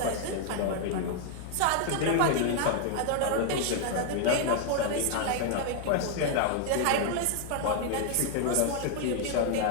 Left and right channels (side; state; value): both; different; correlation 0.00